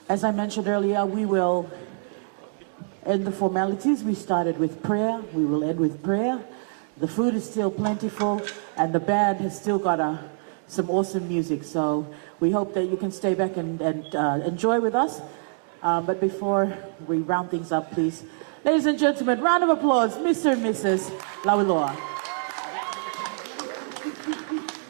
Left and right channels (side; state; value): left; silent; digital silence